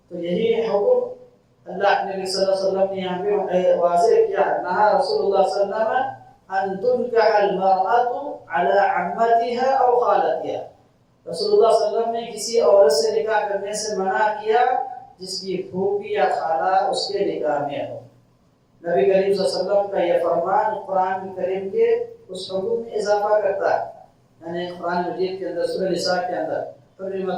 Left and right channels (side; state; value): both; identical; correlation 1.00